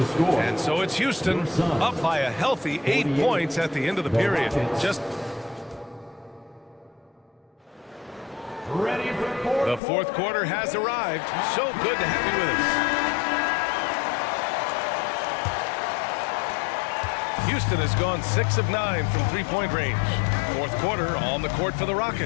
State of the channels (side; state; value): right; drops out; at 9.8 s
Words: And so it's Houston up by a healthy 8 points at the end of the period. Just the fourth quarter has arrived. So good to have you with us. Houston has gone 6 of 9 from three-point range. Fourth quarter on the court for the